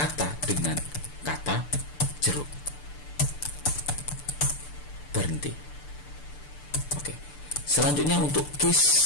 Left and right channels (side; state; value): right; late; 6.8 ms